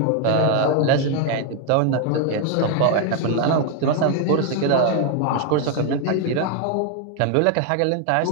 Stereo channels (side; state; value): both; different; correlation 0.00